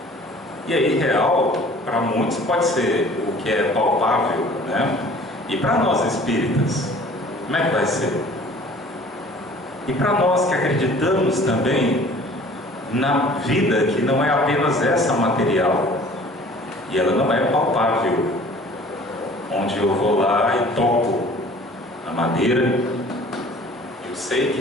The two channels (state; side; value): normal; both; correlation 0.49